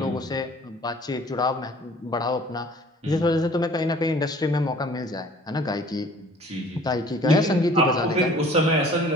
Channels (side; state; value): both; normal; correlation 0.51